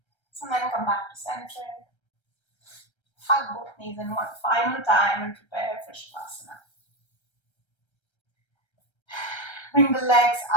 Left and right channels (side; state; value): right; late; 1.3 ms